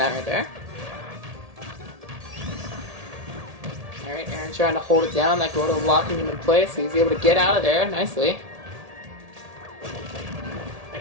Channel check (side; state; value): left; late; 1.8 ms